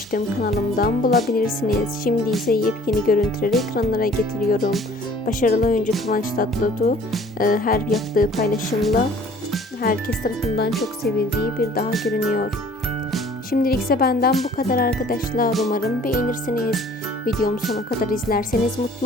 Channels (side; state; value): both; normal; correlation 0.52